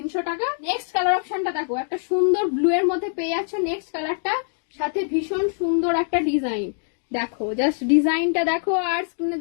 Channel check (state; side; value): silent; right; 63 dB below the other